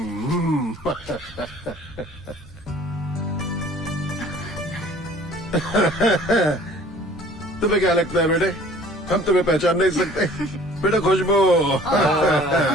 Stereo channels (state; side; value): normal; both; correlation 0.51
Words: तुम्हें क्या लगता है बेटे, हम तुम्हें पहचान नहीं सकते? बेटा खुशबू,